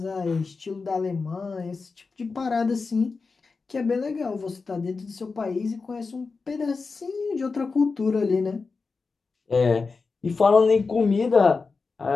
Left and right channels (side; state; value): right; quieter; 4.4 dB